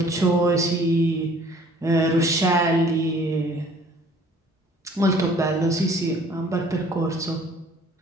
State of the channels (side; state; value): both; normal; correlation 0.54